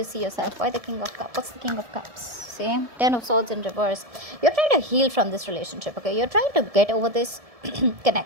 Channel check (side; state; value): left; late; 1.7 ms